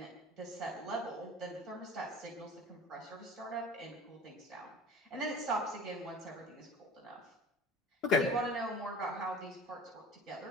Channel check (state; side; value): normal; both; correlation 0.40